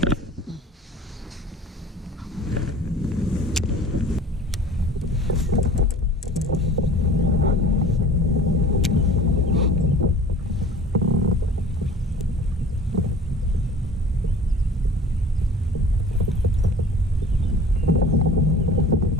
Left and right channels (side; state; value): both; normal; correlation 0.45